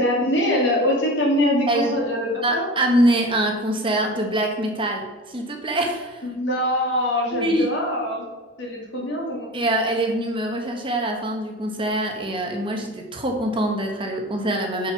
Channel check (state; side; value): normal; both; correlation 0.32